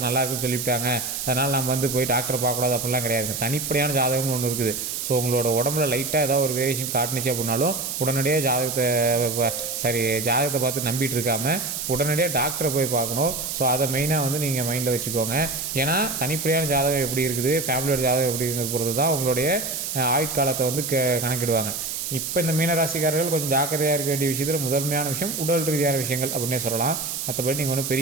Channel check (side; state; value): right; noise; hiss, 4 dB below the sound